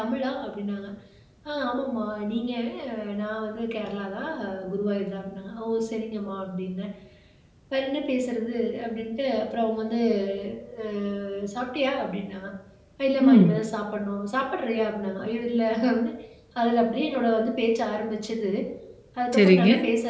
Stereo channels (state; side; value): identical; both; correlation 1.00